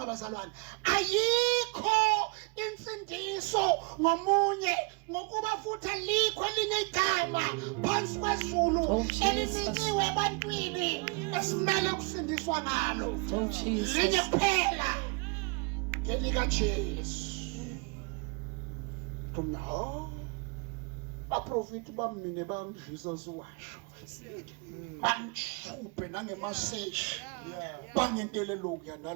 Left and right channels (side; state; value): left; quieter; 32.3 dB